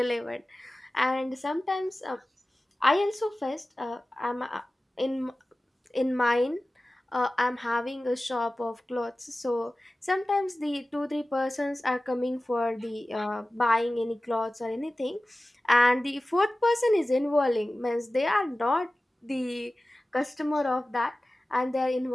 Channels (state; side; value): normal; both; correlation 0.96